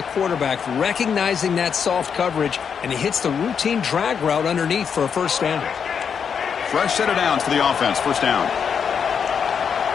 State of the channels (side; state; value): right; quieter; 6.9 dB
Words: quarterback recognizing that soft coverage, and he hits the routine drag route underneath for a first down. Fresh set of downs for the offense. First down.